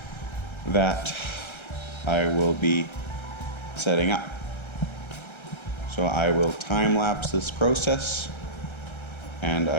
that I will be setting up. So I will time lapse this process and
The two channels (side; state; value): right; late; 1.3 ms